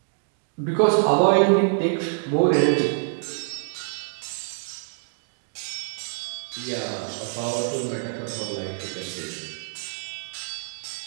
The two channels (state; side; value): silent; left; digital silence